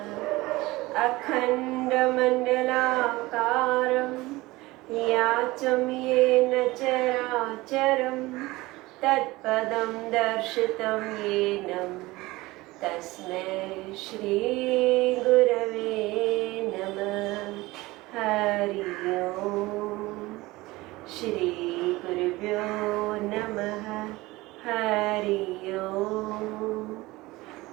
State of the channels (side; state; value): left; quieter; 20.2 dB